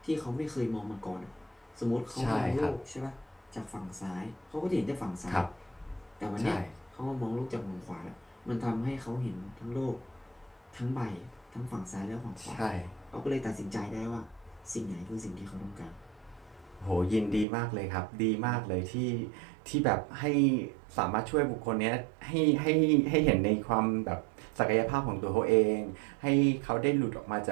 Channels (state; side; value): drops out; left; at 17.4 s